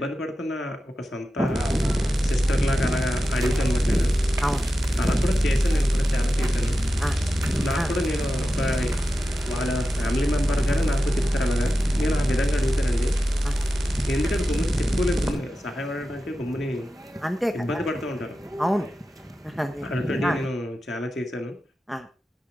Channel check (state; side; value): normal; both; correlation 0.92